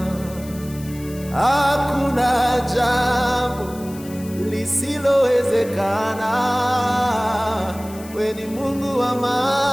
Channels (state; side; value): noise; left; hiss, 19 dB below the sound